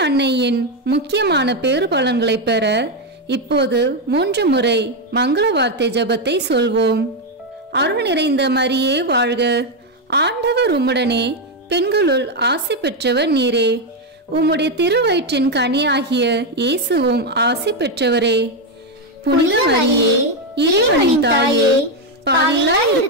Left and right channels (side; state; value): both; normal; correlation 0.05